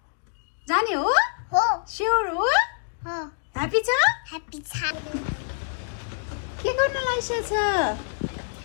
जाने हो? हो। स्योर हो? हो। ह्यापी छ? ह्यापी छ। के गर्न लागिसक्छ?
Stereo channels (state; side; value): silent; right; digital silence